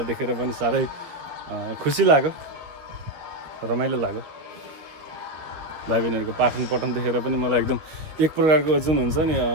देखेर पनि साह्रै खुसी लाग्यो रमाइलो लाग्यो भाइ बहिनीहरूको पाठन पठन देखेर पनि मलाई एकदम एक प्रकारको जुन हुन्छ नि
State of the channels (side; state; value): left; late; 13 ms